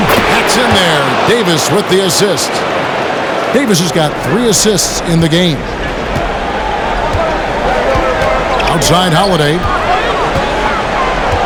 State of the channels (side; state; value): both; identical; correlation 1.00